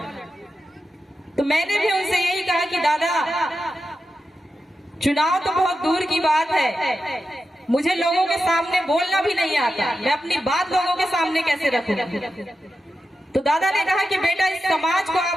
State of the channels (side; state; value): both; normal; correlation 0.90